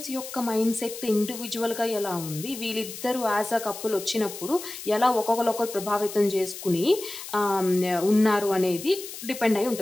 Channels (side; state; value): left; noise; hiss, 11 dB below the sound